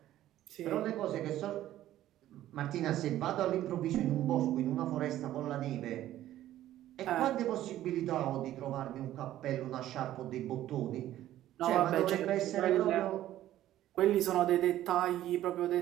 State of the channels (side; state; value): left; quieter; 13.4 dB